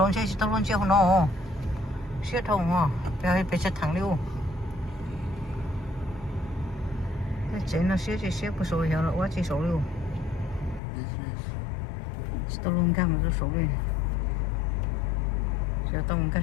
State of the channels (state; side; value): drops out; right; at 10.8 s